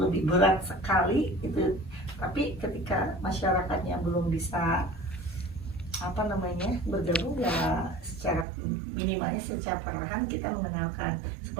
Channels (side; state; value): left; drops out; at 8.5 s